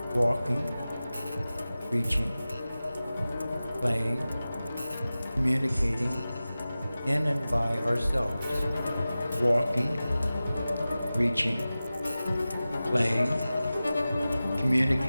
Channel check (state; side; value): inverted; both; correlation -0.96